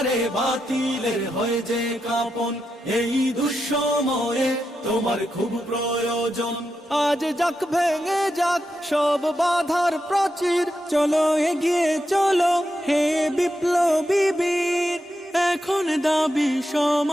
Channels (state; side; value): normal; both; correlation 0.86